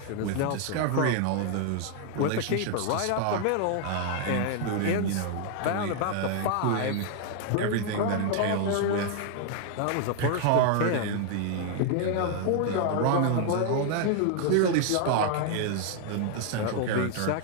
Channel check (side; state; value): both; different; correlation 0.00